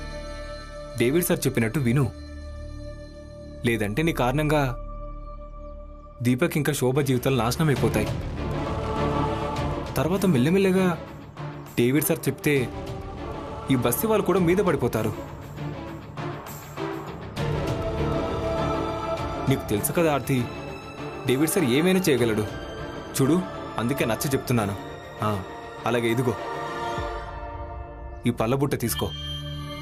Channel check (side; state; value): both; identical; correlation 1.00